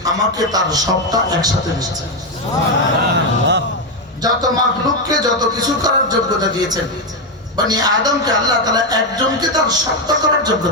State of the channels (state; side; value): normal; both; correlation 0.06